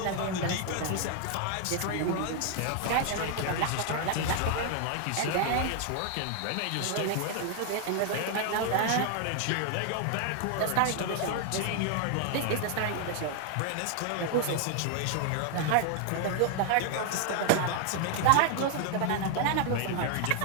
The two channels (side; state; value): both; different; correlation 0.00